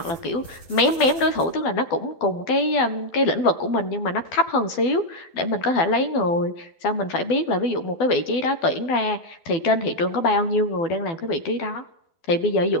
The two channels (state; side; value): late; right; 12 ms